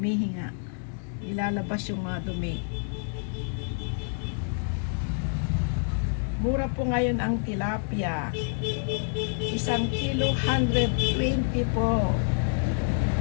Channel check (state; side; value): silent; right; digital silence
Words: Ilalabas yung mga dumi. Mura po ngayon ang tilapia. 1 kilo, 120 po.